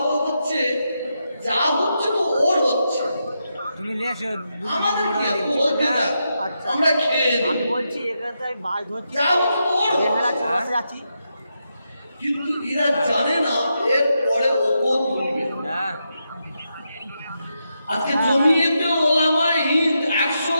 হচ্ছে যা হচ্ছে তো ওর হচ্ছে, আমাদের কি এত হতে যা, আমরা খেয়ে আমি বলছি এখানে মাছ ধরছি, যা হচ্ছে তো ওর হচ্ছে। যাচ্ছি, কিন্তু এরা জানে না এর পরে ওপর তুলবে। আজকে জমিয়েতে ওলামায়ে হিন্দ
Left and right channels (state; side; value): inverted; both; correlation -0.84